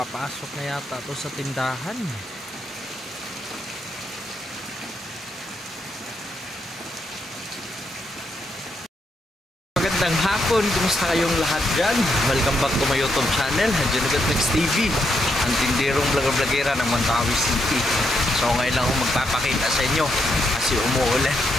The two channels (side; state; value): both; normal; correlation 0.80